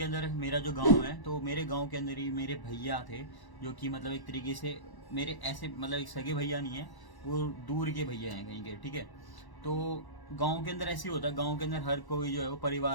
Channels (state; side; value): late; right; 1.1 ms